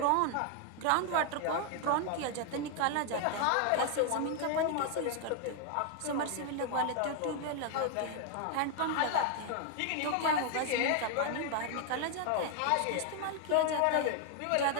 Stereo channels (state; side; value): different; both; correlation 0.00